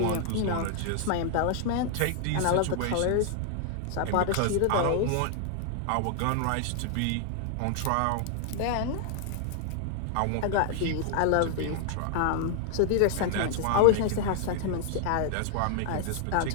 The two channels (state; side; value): different; both; correlation 0.00